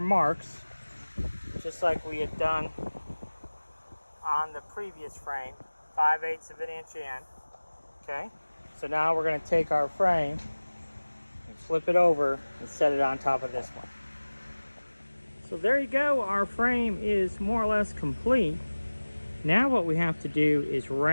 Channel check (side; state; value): both; inverted; correlation -1.00